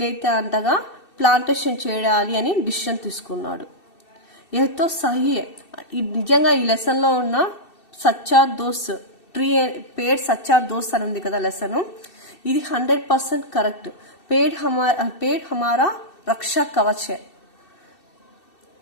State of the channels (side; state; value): right; late; 2.7 ms